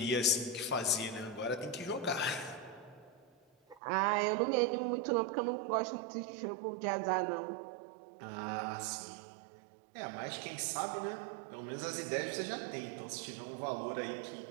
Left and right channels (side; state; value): left; drops out; at 3.8 s